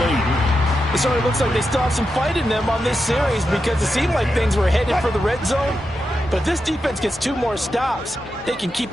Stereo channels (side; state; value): both; normal; correlation 0.88